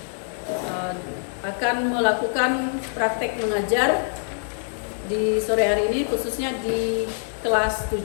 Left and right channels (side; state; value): right; silent; digital silence